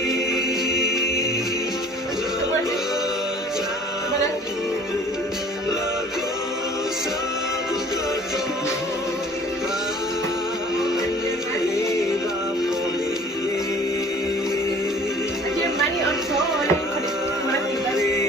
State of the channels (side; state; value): both; normal; correlation 0.49